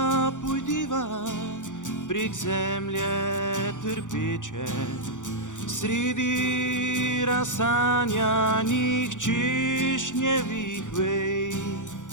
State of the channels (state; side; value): late; right; 0.86 ms